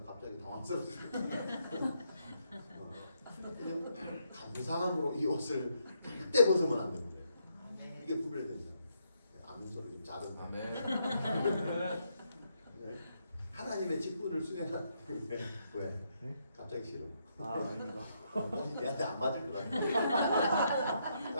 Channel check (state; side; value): inverted; both; correlation -0.77